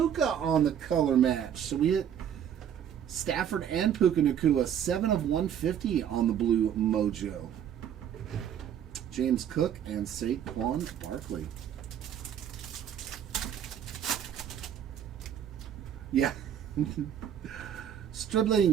on the color match. So we hit Stafford and Puka Nakua. 7 of 150 on the blue mojo. James Cook and Saquon Barkley. Yeah.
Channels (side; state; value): left; quieter; 9.3 dB